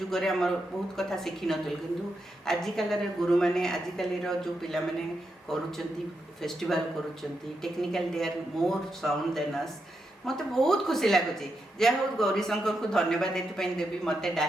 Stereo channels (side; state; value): both; normal; correlation 0.84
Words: हमर बहुत कथा शिखि नथिल किंतु आजिकल रे गुरु माने आजिकल रो जो पिला माने करूचंती फेस्टिवल करूचंती technical they are more sound than us मते बहुत खुशी लागुची जे हो गौरी शंकर को धन्यवाद देते पई देबी मते